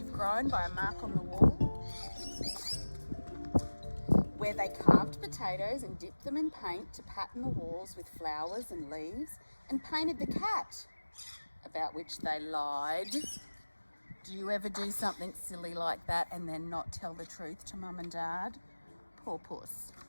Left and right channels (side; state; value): both; inverted; correlation -1.00